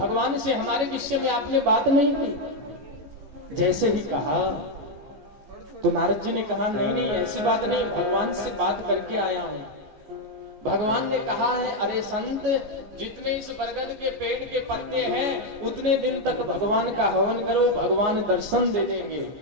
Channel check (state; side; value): late; left; 14 ms